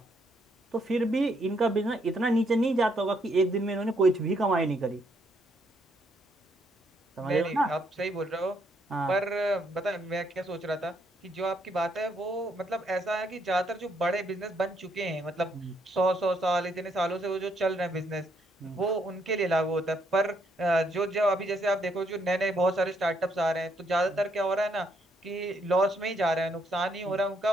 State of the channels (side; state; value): both; normal; correlation 0.73